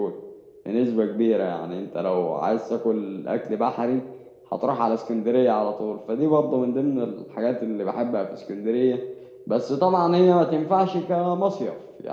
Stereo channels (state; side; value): identical; both; correlation 1.00